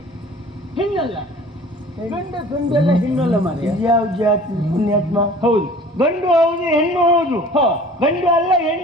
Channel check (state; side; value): normal; both; correlation 0.46